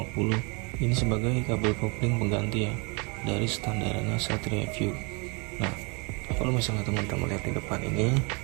Ini sebagai kabel kopling pengganti ya dari standarannya Satria FU. Nah, kalau misalnya teman-teman lihat di depan ini,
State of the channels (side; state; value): left; quieter; 31.2 dB